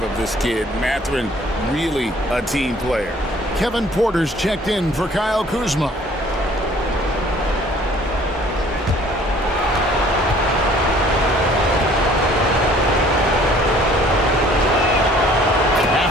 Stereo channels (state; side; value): normal; both; correlation 0.55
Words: of this kid. Mathurin, really a team player. Kevin Porter's checked in for Kyle Kuzma.